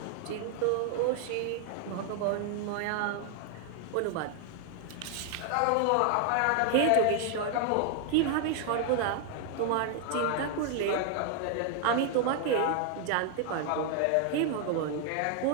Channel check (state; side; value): different; both; correlation 0.00